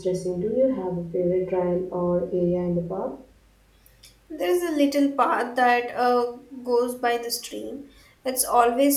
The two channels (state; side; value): identical; both; correlation 1.00